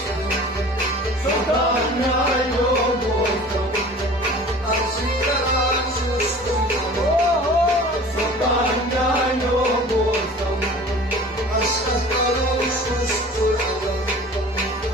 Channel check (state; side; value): normal; both; correlation 0.43